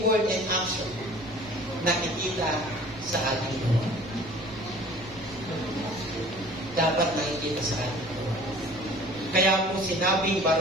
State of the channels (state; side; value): noise; right; rumble, 19 dB below the sound